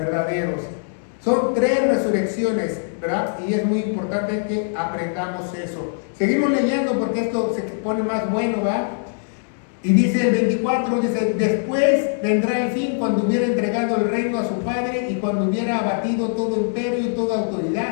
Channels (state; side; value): silent; right; digital silence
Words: Son 3 resurrecciones, ¿verdad? Y es muy importante que aprendamos eso. Seguimos leyendo porque esto se pone más bueno, ¿verdad? Y dice el 24, dice, después vendrá el fin cuando hubiera entregado el reino a su Padre y cuando hubiera abatido todo imperio y toda